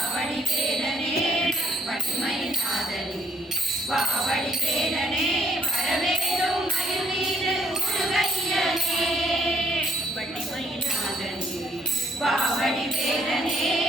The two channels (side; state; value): both; normal; correlation 0.65